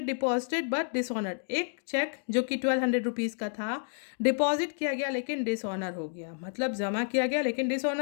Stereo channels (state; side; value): silent; right; digital silence